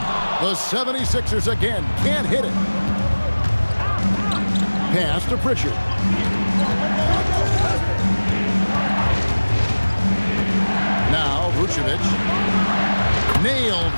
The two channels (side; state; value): both; inverted; correlation -1.00